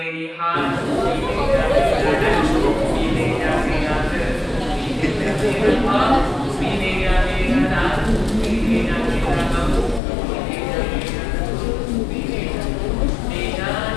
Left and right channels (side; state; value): right; drops out; at 10.0 s